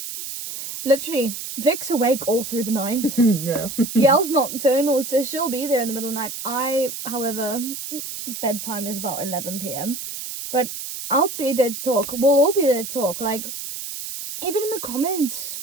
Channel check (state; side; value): noise; right; hiss, 8 dB below the sound